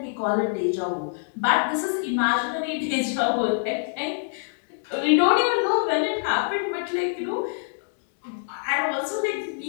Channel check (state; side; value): silent; right; digital silence